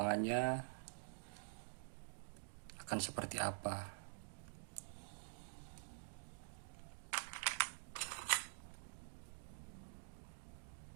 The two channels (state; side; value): silent; left; digital silence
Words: akan seperti apa.